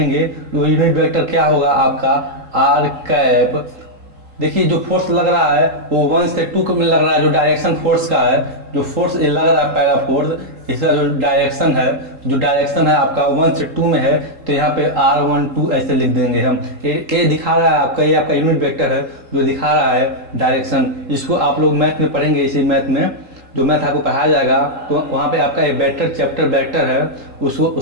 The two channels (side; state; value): left; late; 3.8 ms